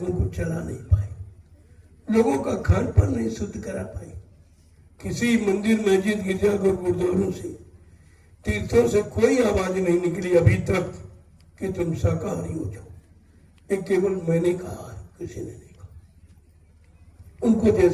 को चला नहीं पाए, लोगों का खान पान नहीं शुद्ध करा पाए। किसी मंदिर मस्जिद गिरजाघर गुरुद्वारों से, तीर्थों से कोई आवाज नहीं निकली अभी तक कि तुम शाकाहारी हो जाओ। ये केवल मैंने कहा है, किसी ने नहीं कहा। उनको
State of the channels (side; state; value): both; identical; correlation 1.00